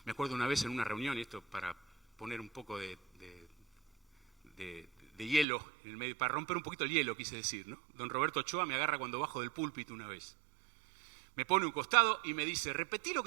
Me acuerdo una vez en una reunión, y esto para poner un poco de hielo en el medio, para romper un poquito el hielo, quise decir, ¿no? Don Roberto Ochoa me agarra cuando bajo del púlpito una vez. Me pone un costado y me dice, repetí lo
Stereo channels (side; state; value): left; drops out; at 5.5 s